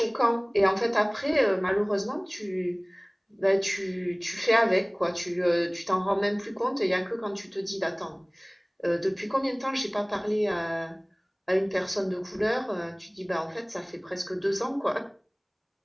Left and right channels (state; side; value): identical; both; correlation 1.00